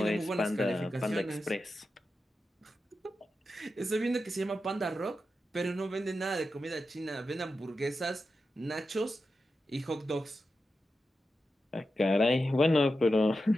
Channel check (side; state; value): both; normal; correlation 0.90